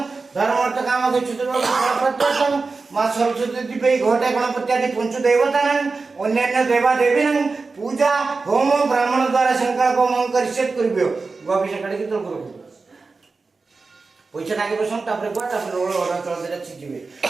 धर्म अर्थ काम के चतुर्वर्ग मां सरस्वती दिव्य घोटे गणपत्यादि पंच देवतानां अन्यान्य देवा देवीनां पूजा होम ब्राह्मण द्वारा संकल्प मंग करिसेट करबियो गोविश काढी तो करू पैसा नागे बसम तापरे कोटा तापरे रोळ ओडा चल देला छिजिबे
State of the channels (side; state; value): left; quieter; 4.1 dB